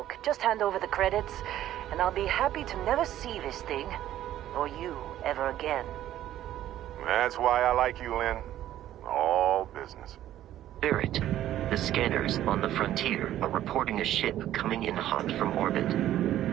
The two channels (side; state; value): left; quieter; 12.7 dB